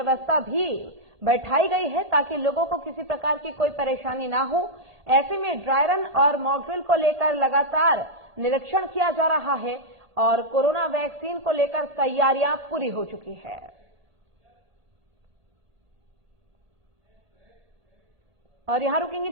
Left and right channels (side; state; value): left; late; 1.5 ms